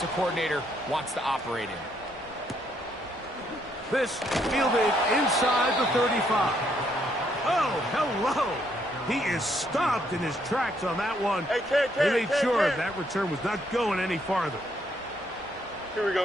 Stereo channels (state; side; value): normal; both; correlation 0.72